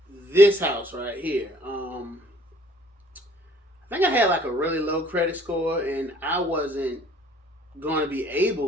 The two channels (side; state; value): both; normal; correlation 0.57